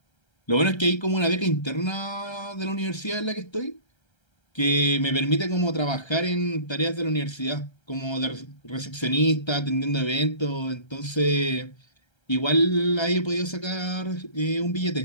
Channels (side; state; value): right; late; 1.3 ms